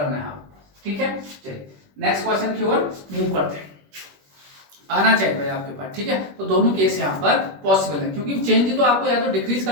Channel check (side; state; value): left; late; 21 ms